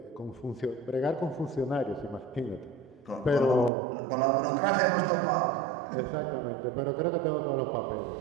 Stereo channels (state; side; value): drops out; left; at 3.7 s